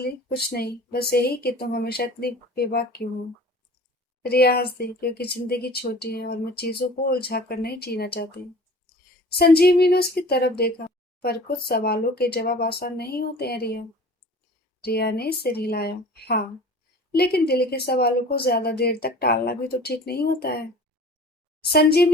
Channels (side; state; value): both; normal; correlation 0.43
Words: कुछ नहीं, बस यही कि तुम हमेशा इतनी बेबाक क्यों हो। रिया हंस दी, क्योंकि जिंदगी छोटी है और मैं चीजों को उलझा कर नहीं जीना चाहती। संजीवनी ने उसकी तरफ देखा। पर कुछ सवालों के जवाब आसान नहीं होते हैं रिया। रिया ने सिर हिलाया। हाँ, लेकिन दिल के सवालों को ज्यादा देर तक टालना भी तो ठीक नहीं होता है।